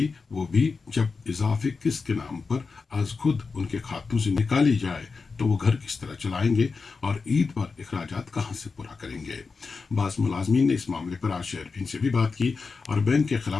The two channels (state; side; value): quieter; right; 4.6 dB